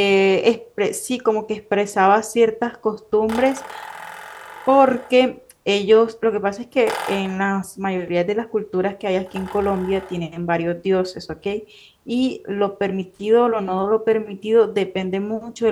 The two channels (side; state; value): both; identical; correlation 1.00